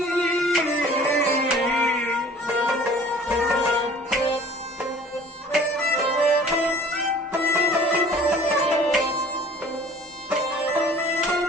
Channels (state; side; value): normal; both; correlation 0.49